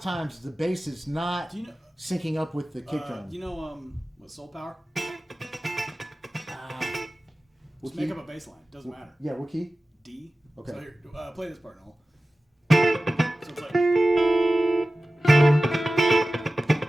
the bass is not syncing up with the kick drum. Do you know what Soul Power? Just key? make up a bass line. Doesn't matter. Yeah, what key? D. Okay. So here, play this part, Noel. So it's like.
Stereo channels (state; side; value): normal; both; correlation 0.96